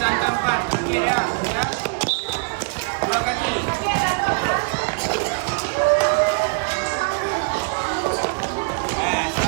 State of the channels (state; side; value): quieter; left; 33.7 dB